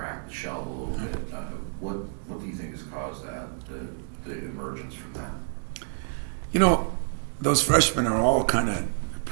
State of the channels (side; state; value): left; silent; digital silence